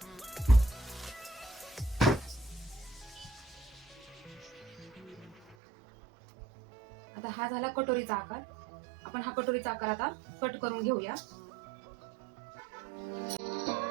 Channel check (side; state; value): left; drops out; at 5.6 s